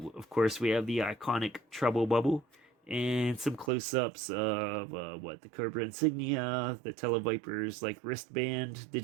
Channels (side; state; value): left; drops out; at 3.7 s